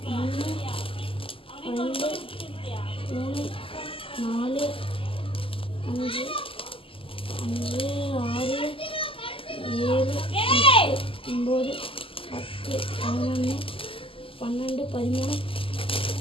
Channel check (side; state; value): right; late; 0.26 ms